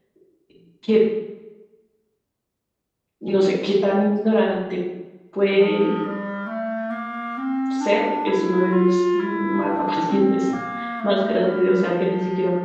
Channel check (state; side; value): identical; both; correlation 1.00